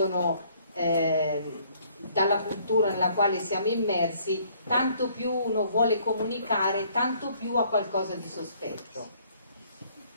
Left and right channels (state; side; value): inverted; both; correlation -0.62